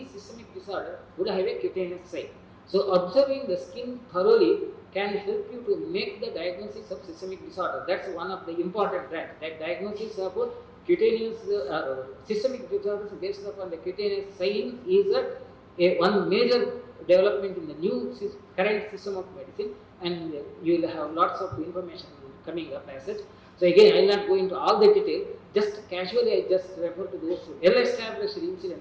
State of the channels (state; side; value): identical; both; correlation 1.00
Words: systemic disorder would have a cutaneous site. So observing the skin thoroughly can help you to make the diagnosis of systemic disorder. That's one of the important tracks. That diagnosis of cutaneous systemic disorders based upon the cutaneous sign is one major development in the new current system of medicine, and you will have lots of information coming up as such. So again, I will not go into all the detail. Just casually, I just refer to those well-established